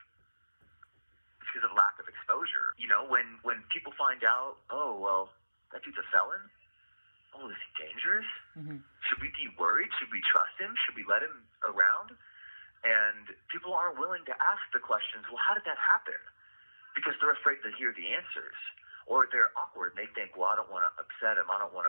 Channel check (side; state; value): both; inverted; correlation -1.00